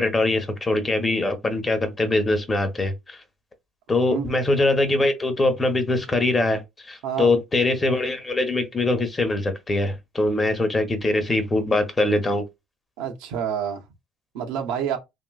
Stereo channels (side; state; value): both; normal; correlation 0.77